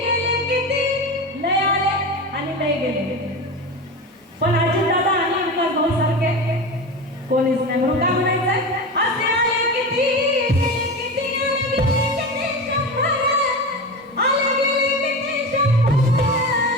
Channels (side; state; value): both; normal; correlation 0.25